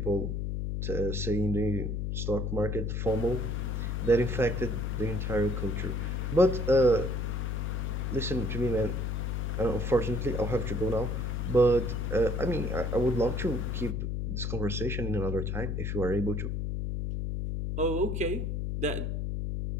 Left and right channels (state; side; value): noise; left; hum, 1 dB below the sound